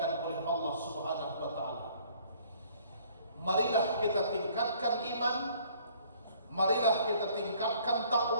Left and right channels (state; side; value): inverted; both; correlation -0.59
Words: oleh Allah Subhanahu wa taala. Marilah kita tingkatkan iman, marilah kita tingkatkan